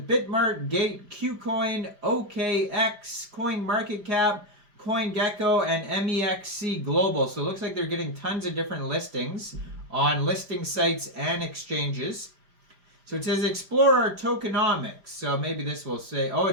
Bitmart, Gate, KuCoin, OKX, CoinMarketCap, CoinGecko, and MEXC Global. So it looks like they're getting tons of different listings on listing sites and exchanges. So it says explore our tokenomics. So maybe this will say, oh,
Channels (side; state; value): left; late; 5.0 ms